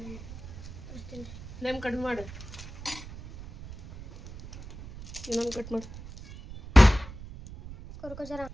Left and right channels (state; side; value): noise; right; rumble, 14 dB below the sound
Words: ಫ್ಲೇಮ್ ಕಡಿಮೆ ಮಾಡು. ಇನ್ನೊಂದು ಕಟ್ ಮಾಡಿ ಕೊರ್ಕೋಜರ.